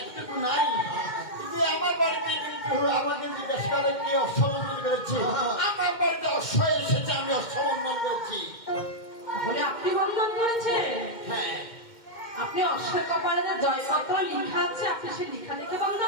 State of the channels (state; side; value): late; right; 2.1 ms